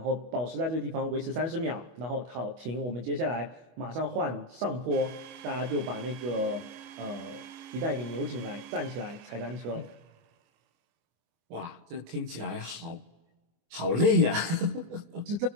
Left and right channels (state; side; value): late; left; 24 ms